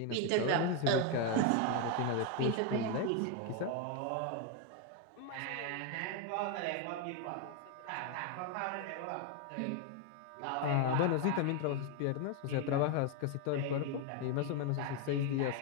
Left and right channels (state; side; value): different; both; correlation 0.01